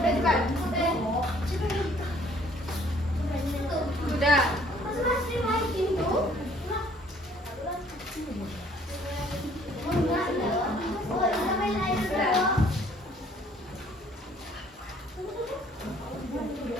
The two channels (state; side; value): normal; both; correlation 0.59